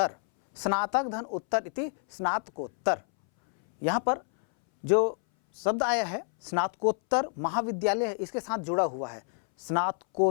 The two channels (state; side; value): silent; right; 59 dB below the other